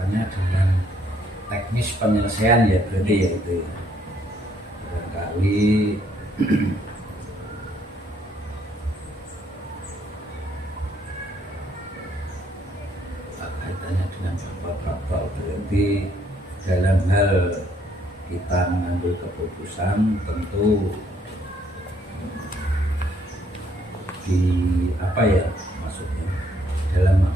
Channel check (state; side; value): normal; both; correlation 0.68